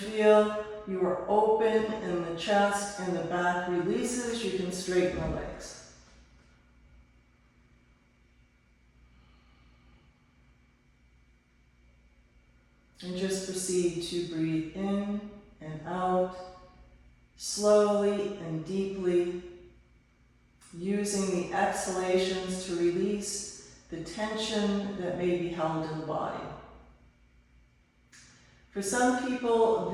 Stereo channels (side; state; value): both; identical; correlation 1.00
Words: you are open in the chest and the back releases, you can straighten the legs. And just proceed to breathe in and out, slowly and deeply, using the exhalations to release the tension that may be held in the body. For some people,